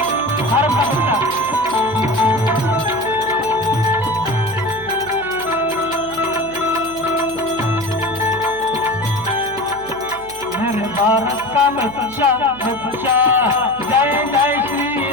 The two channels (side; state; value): right; noise; hum, 20 dB below the sound